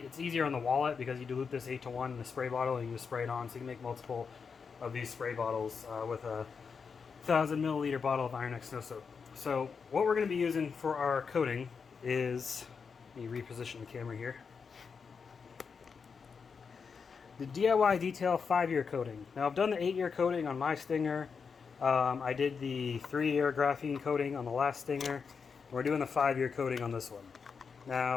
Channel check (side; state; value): right; quieter; 5.7 dB